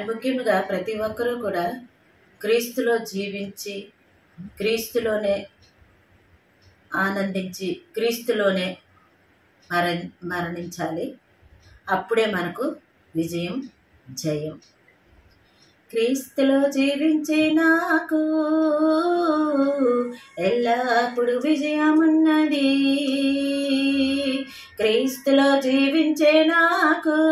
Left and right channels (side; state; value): both; identical; correlation 1.00